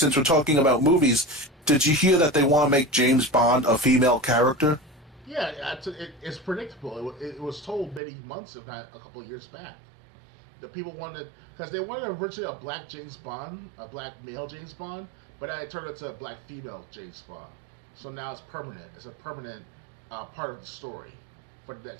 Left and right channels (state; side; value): drops out; left; at 8.0 s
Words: we're talking about movies, did you hear that they want to make James Bond a female character? Yeah, it's predictable. It was told many months, if not a couple of years back. The people wanted, because they wanted originally a black James Bond, a black male James Bond, but then it turned into a black female James Bond. So now it's permanent. It's a permanent part of the story for the